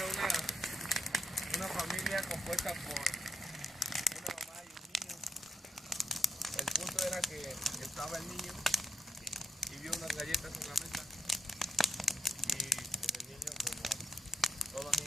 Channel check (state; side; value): normal; both; correlation 0.79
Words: una familia compuesta por una mamá y un niño. El punto era que estaba el niño y vio unas galletas en la mesa. Y pues el niño, como todos los